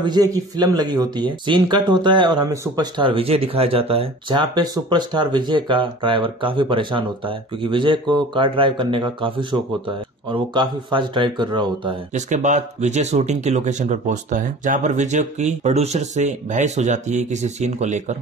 की फिल्म लगी होती है। सीन कट होता है और हमें सुपरस्टार विजय दिखाया जाता है, जहाँ पे सुपरस्टार विजय का ड्राइवर काफी परेशान होता है क्योंकि विजय को कार ड्राइव करने का काफी शौक होता है और वो काफी फास्ट ड्राइव कर रहा होता है। जिसके बाद विजय शूटिंग की लोकेशन पर पहुंचता है, जहाँ पर विजय की प्रोड्यूसर से बहस हो जाती है किसी सीन को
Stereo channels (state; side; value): normal; both; correlation 0.42